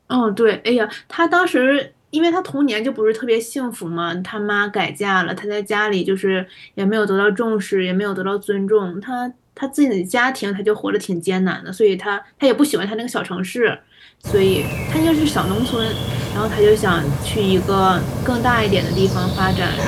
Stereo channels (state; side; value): identical; both; correlation 1.00